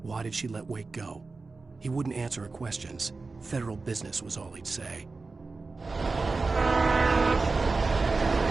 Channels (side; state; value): left; quieter; 3.9 dB